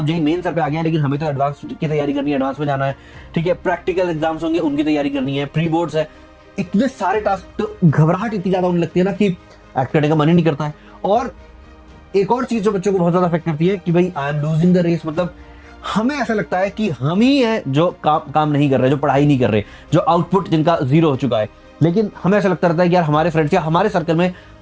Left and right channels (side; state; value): both; identical; correlation 1.00